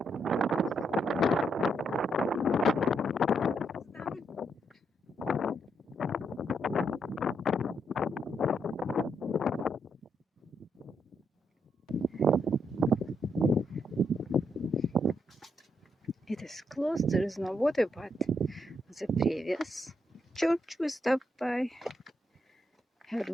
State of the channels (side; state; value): both; normal; correlation 0.78